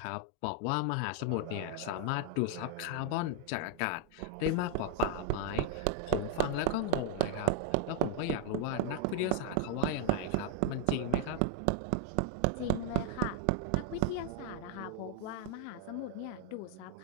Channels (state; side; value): different; both; correlation 0.00